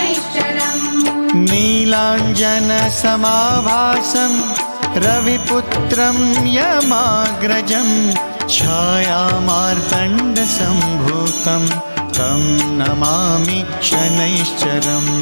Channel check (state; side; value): inverted; both; correlation -1.00